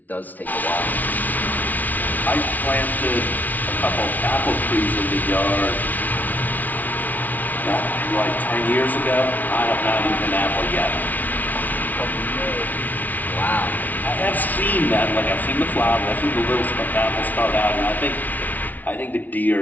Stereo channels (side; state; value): right; late; 0.079 ms